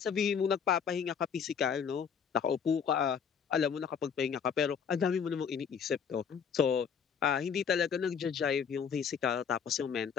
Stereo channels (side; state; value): right; quieter; 7.0 dB